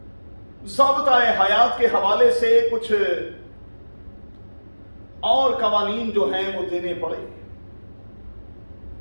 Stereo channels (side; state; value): both; inverted; correlation -1.00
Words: ضابطہ حیات کے حوالے سے کچھ اور قوانین جو ہیں وہ دینے پڑے.